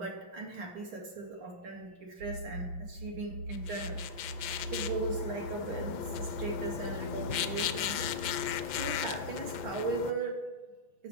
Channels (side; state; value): left; late; 5.9 ms